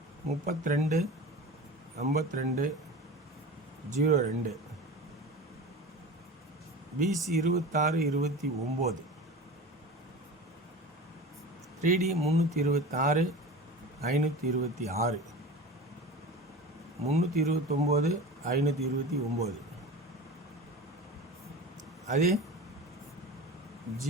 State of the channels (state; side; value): normal; both; correlation 0.33